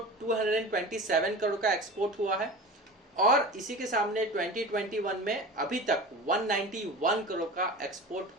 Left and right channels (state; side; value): normal; both; correlation 0.33